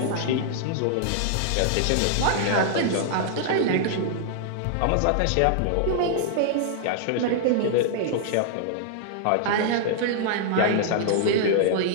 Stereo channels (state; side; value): different; both; correlation -0.01